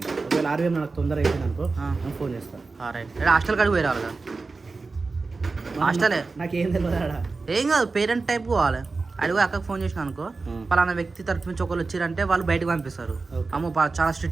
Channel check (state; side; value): quieter; left; 4.0 dB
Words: ఒకవేళ ఆర్వీఎం నాకు తొందర అయిపోయింది అనుకో నేను ఫోన్ చేస్తాను. రైట్. హాస్టల్ కాడికి పోయి రావాలి కదా. హాస్టలే నాకేం తెలియదు ఆడ. ఏం కాదు, పేరెంట్ టైప్ పోవాలి. అడిగి అక్కకు ఫోన్ చేసిన అనుకో, పలానా వ్యక్తి తరఫు నుంచి ఒకళ్ళు వచ్చారంటే వాళ్ళు బయటకు పంపిస్తారు. అమ్మో చాలా